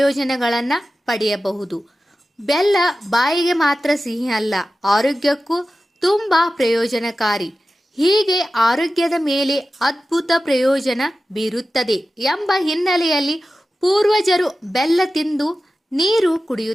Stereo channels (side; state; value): both; normal; correlation 0.94